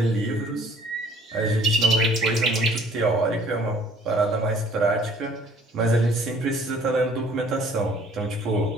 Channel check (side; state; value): both; normal; correlation 0.56